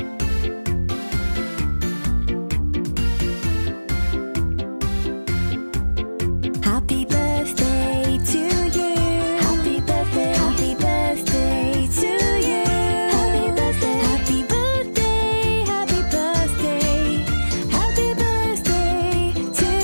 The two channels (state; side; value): inverted; both; correlation -1.00